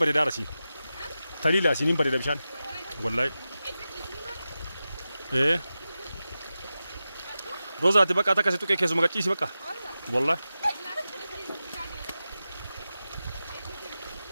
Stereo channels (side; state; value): both; inverted; correlation -0.93